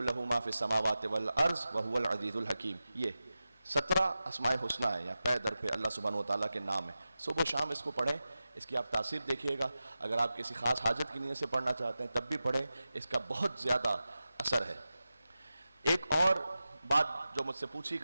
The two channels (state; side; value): inverted; both; correlation -0.93